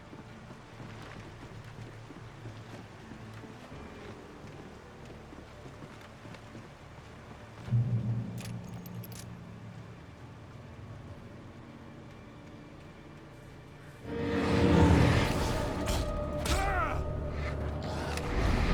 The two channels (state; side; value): identical; both; correlation 1.00